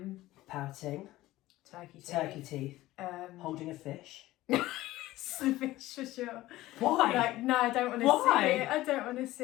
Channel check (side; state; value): right; quieter; 16.8 dB